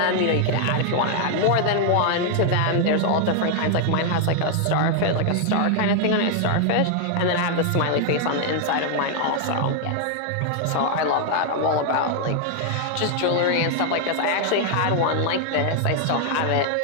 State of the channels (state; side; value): different; both; correlation 0.00